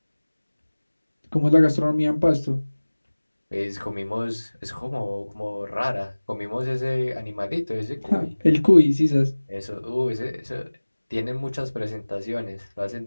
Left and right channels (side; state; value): both; inverted; correlation -1.00